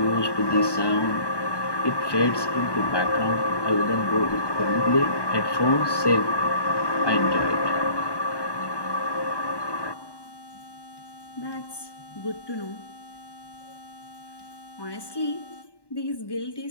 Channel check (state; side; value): late; right; 1.2 ms